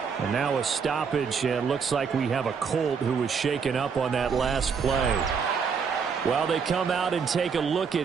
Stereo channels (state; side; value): quieter; left; 6.0 dB